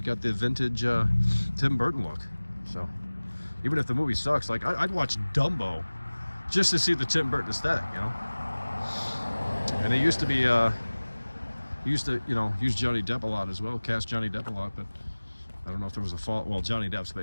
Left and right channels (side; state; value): both; inverted; correlation -1.00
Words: vintage Tim Burton look. So even if the movie sucks, like I'd watch Dumbo just to see the Tim Burton aesthetic. You know, and it used to be you know, use Johnny Depp a lot as well, cast Johnny Depp a lot, but I don't know if there was a fault. Well, Johnny Depp's